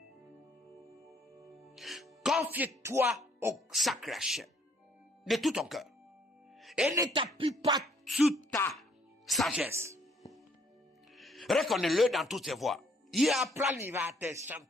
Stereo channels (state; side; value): normal; both; correlation 0.64